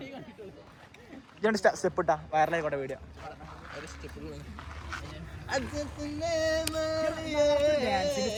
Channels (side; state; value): both; identical; correlation 1.00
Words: സ്റ്റെപ്പ് ഇട്ടാ വൈറലായിക്കോട്ടെ വീഡിയോ.